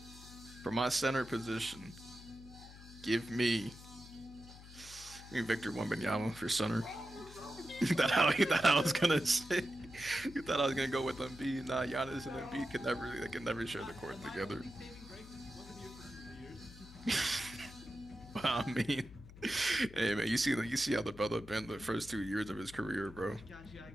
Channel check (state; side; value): noise; left; hum, 17 dB below the sound